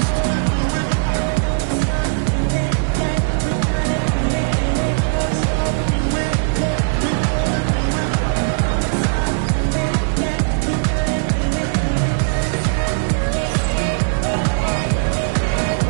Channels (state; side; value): silent; left; 55 dB below the other